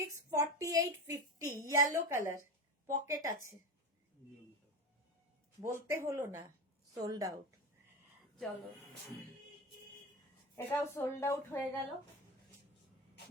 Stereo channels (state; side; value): normal; both; correlation 0.23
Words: 48, 50 ইয়েলো কালার, পকেট আছে। বলতে হলো না সোল্ড আউট। চলো এটাও সোল্ড আউট হয়ে গেল।